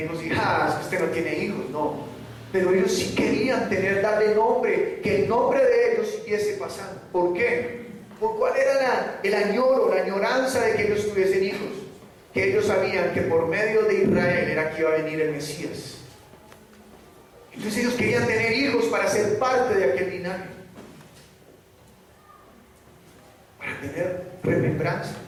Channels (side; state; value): both; identical; correlation 1.00